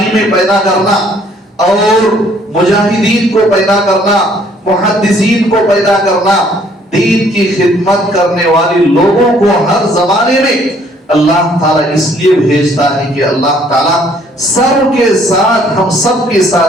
میں پیدا کرنا اور مجاہدین کو پیدا کرنا، محدثین کو پیدا کرنا، دین کی خدمت کرنے والے لوگوں کو ہر زمانے میں اللہ تعالیٰ اس لیے بھیجتا ہے کہ اللہ تعالیٰ سب کے ساتھ، ہم سب کے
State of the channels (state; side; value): normal; both; correlation 0.62